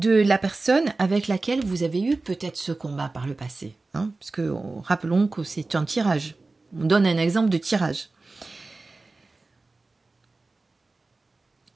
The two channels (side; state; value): left; quieter; 3.4 dB